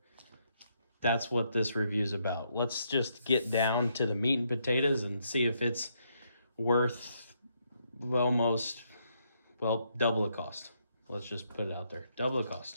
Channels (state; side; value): inverted; both; correlation -0.76